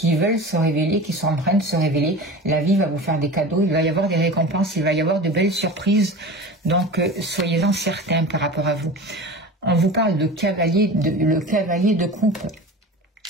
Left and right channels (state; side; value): normal; both; correlation 0.33